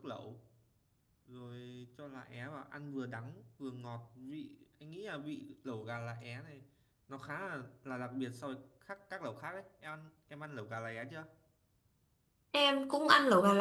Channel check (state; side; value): identical; both; correlation 1.00